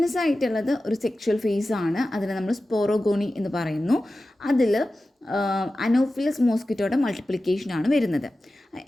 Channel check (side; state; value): both; normal; correlation 0.94